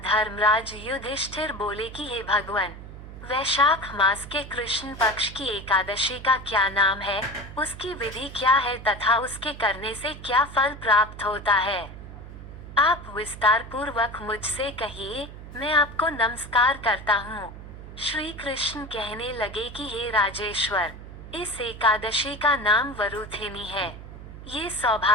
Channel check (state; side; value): noise; right; hum, 13 dB below the sound